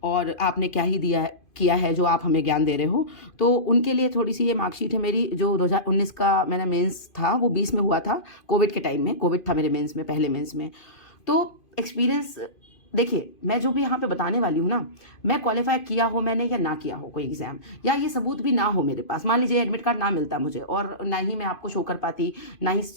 और आपने क्या ही दिया है किया है जो आप हमें ज्ञान दे रहे हो, तो उनके लिए थोड़ी सी ये मार्कशीट है मेरी। जो 2019 का मेरा मेंस था वो 20 में हुआ था, कोविड के टाइम में। कोविड था मेरे मेंस में, पहले मेंस में। तो एक्सपीरियंस देखिए, मैं जो भी यहाँ पे बताने वाली हूँ ना, मैं क्वालिफाई किया हो मैंने या ना किया हो कोई एग्जाम, या ये सबूत भी ना हो मेरे पास, मान लीजिए एडमिट कार्ड ना मिलता मुझे और ना ही मैं आपको शो कर पाती, ना ही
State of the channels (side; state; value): right; late; 2.5 ms